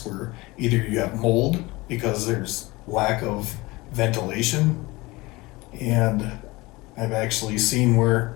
where either you have mold because there's lack of ventilation, and I've actually seen where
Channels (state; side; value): quieter; right; 22.1 dB